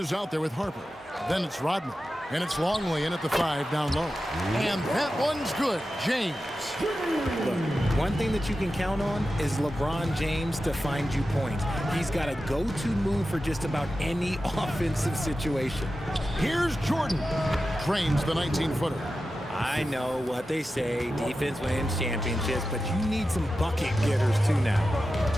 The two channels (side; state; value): both; normal; correlation 0.92